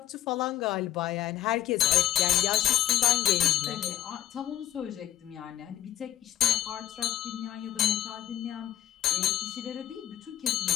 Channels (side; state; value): right; quieter; 11.5 dB